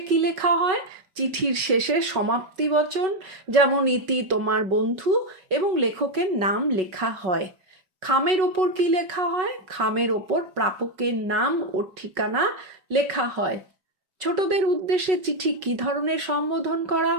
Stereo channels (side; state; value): left; late; 5.4 ms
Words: কি লেখা হয়? চিঠির শেষে সমাপ্তি বচন, যেমন ইতি তোমার বন্ধু, এবং লেখকের নাম লেখা হয়। খামের ওপর কি লেখা হয়? খামের ওপর প্রাপকের নাম ও ঠিকানা লেখা হয়। ছোটদের উদ্দেশ্যে চিঠি কি ধরনের সম্বোধন করা